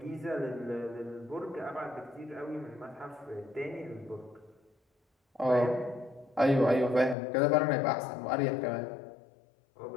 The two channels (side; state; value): right; drops out; at 7.2 s